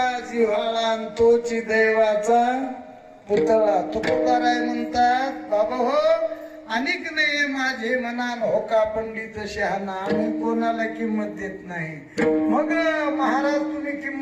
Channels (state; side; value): identical; both; correlation 1.00